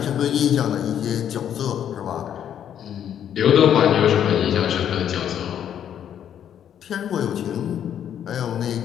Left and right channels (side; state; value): right; quieter; 9.6 dB